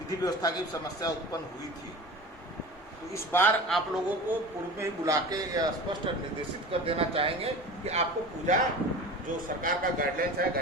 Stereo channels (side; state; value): both; normal; correlation 0.35